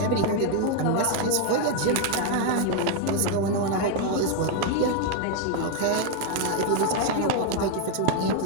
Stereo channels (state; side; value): different; both; correlation 0.01